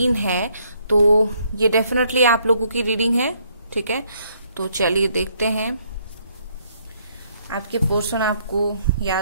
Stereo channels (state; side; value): inverted; both; correlation -0.69